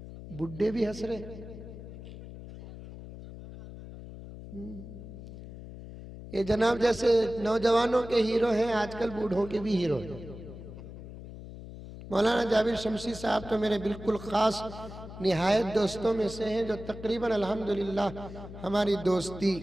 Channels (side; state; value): left; noise; hum, 13 dB below the sound